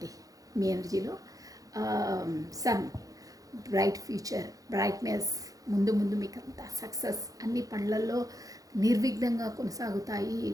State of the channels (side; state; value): left; late; 0.17 ms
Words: మీ ఎనర్జీలో. సన్, బ్రైట్ ఫ్యూచర్, బ్రైట్నెస్, ముందు మీకు అంతా సక్సెస్, అన్ని పనులలో నిర్విఘ్నంగా కొనసాగుతాయి.